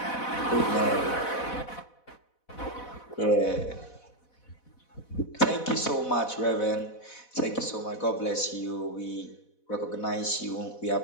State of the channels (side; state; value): right; late; 4.1 ms